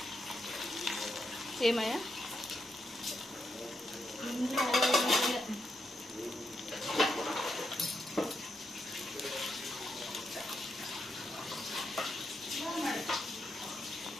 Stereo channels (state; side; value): normal; both; correlation 0.82